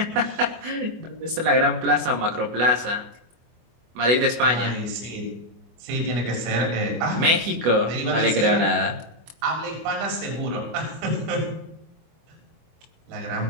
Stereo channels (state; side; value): late; left; 24 ms